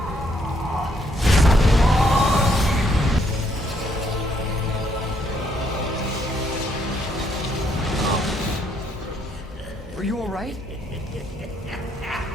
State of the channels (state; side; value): normal; both; correlation 0.71